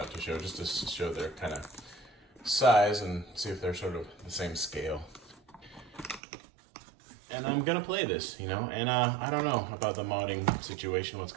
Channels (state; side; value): drops out; left; at 6.2 s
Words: to show, just to show their kind of size and see if they're sort of the same scale. And I'm gonna play this, you know, and I don't know about the modding situation, what's